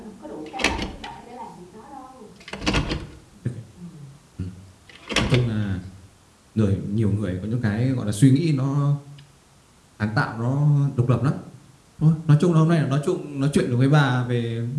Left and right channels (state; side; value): identical; both; correlation 1.00